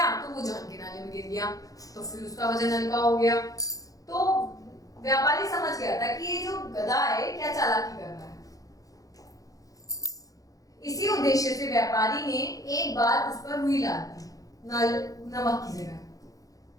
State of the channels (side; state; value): right; late; 0.17 ms